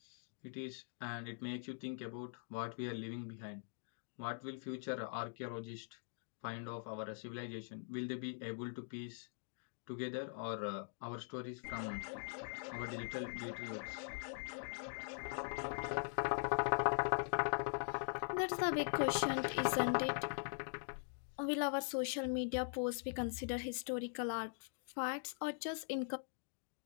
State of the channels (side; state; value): right; silent; digital silence